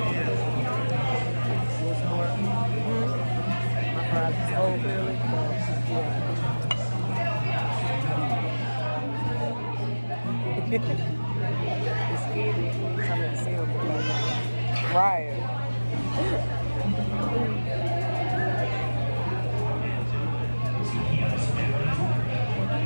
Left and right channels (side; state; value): both; inverted; correlation -1.00